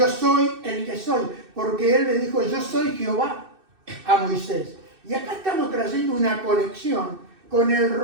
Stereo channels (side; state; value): left; late; 2.6 ms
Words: soy el que soy, porque él le dijo, yo soy Jehová a Moisés. Y acá estamos trayendo una conexión con el